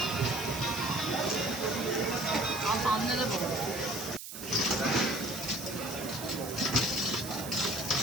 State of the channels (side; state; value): right; noise; hiss, 10 dB below the sound